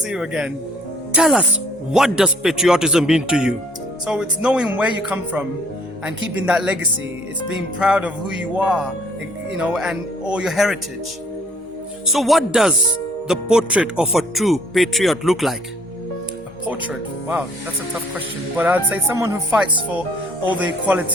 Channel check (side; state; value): both; normal; correlation 0.59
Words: you again. Tell us, what does patriotism mean to you? So it's knowing where you come from and keeping that legacy. It's being proud of who you are, and all your heritage. So what does the portrait of a true patriot look like? A portrait? Wow, that's a tough question. But I'd say someone who fights for all the